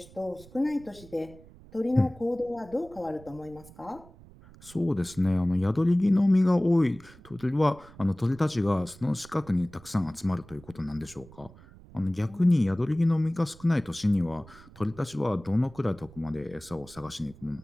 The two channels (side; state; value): right; noise; rumble, 22 dB below the sound